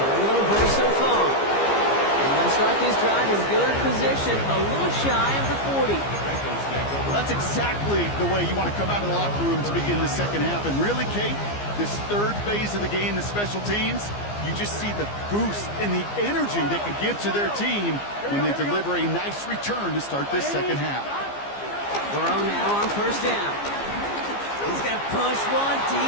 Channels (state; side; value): late; right; 15 ms